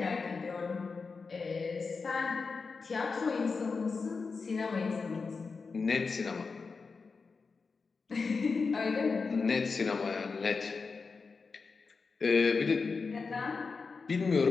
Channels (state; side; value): quieter; right; 4.7 dB